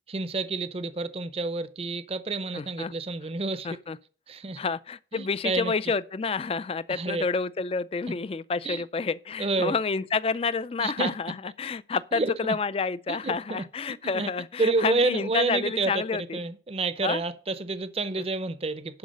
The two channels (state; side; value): normal; both; correlation 0.26